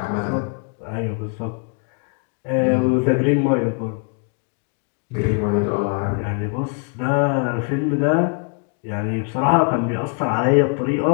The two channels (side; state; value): right; quieter; 39.2 dB